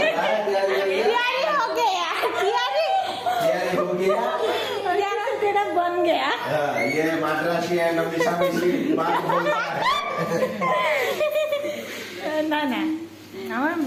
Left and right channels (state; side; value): identical; both; correlation 1.00